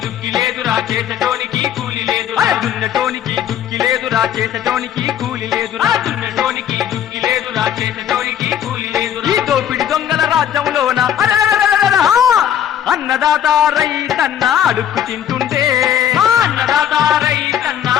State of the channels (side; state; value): right; quieter; 9.9 dB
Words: దుక్కి లేదురా చేసటోనికి కూలి లేదురా దున్నటోనికి దుక్కి లేదురా చేసటోనికి కూలి లేదురా దున్నటోనికి దుక్కి లేదురా చేసటోనికి కూలి లేదురా ఈ దోపిడి దొంగల రాజ్యంలోన అన్నదాత రైతన్న అడుక్కు తింటుండే అన్నదాత రైతన్న